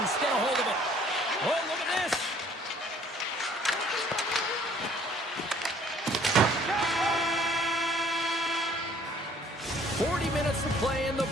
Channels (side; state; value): both; normal; correlation 0.58